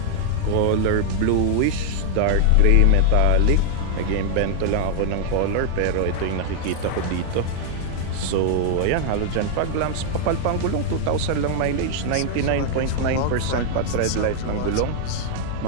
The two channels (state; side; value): different; both; correlation 0.00